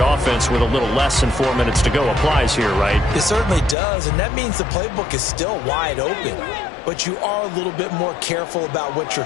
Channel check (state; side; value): drops out; right; at 3.8 s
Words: offense with a little less than 4 minutes to go applies here, right? It certainly does, and that means the playbook is still wide open. But you are a little bit more careful about what you're